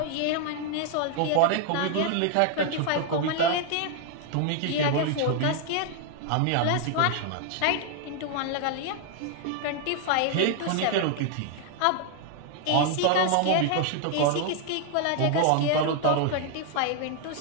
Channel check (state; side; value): different; both; correlation 0.00